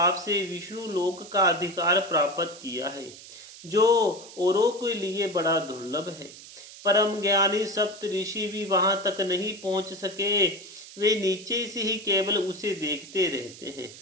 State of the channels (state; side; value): noise; right; hiss, 17 dB below the sound